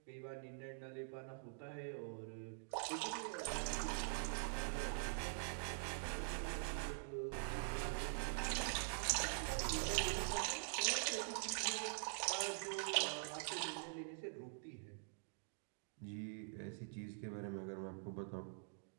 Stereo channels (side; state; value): left; silent; digital silence